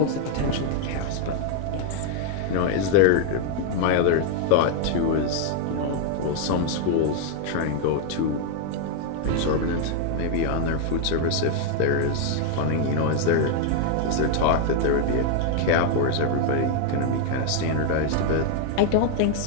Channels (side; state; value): both; different; correlation 0.00